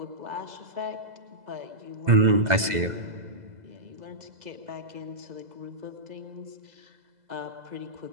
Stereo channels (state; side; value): late; left; 2.0 ms